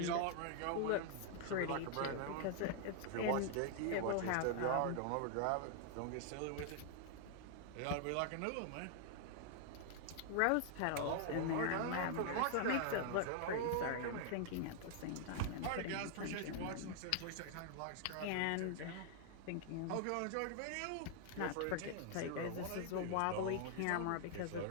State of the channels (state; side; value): different; both; correlation 0.00